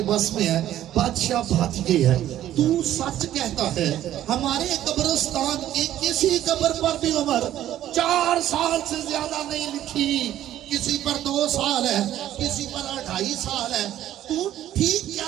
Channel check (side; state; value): left; quieter; 12.5 dB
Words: بس میں ہے. بادشاہ بات یہ ہے, تو سچ کہتا ہے, ہمارے قبرستان کی کسی قبر پر بھی عمر 4 سال سے زیادہ نہیں لکھی, کسی پر 2 سال ہے, کسی پر 2.5 سال ہے. تو ٹھیک